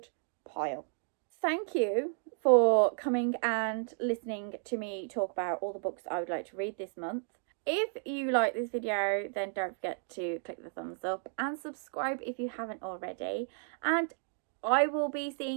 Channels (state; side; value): silent; left; 56 dB below the other